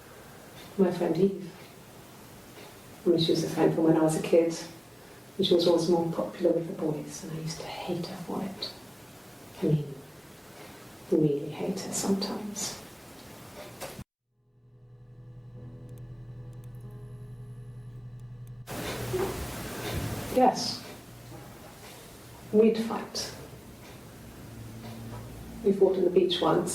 my friend Eve. I mean, she was a friend from when I was a kid, and she was always more popular with the boys, and I used to hate her for it. I mean, really hate her sometimes. Yes, we'd fight. We fought on the beach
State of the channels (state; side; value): identical; both; correlation 1.00